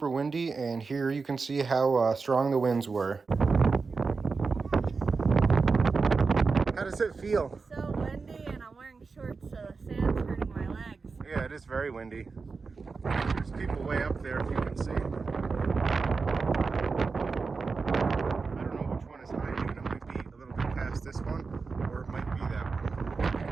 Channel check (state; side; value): quieter; left; 4.6 dB